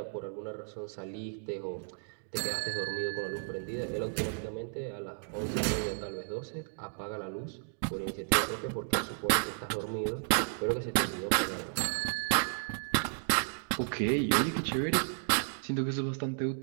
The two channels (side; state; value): left; silent; digital silence